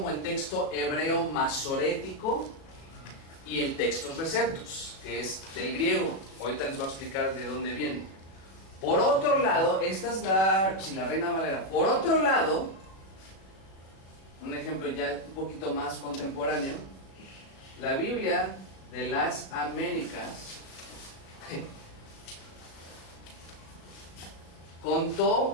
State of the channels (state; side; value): late; right; 36 ms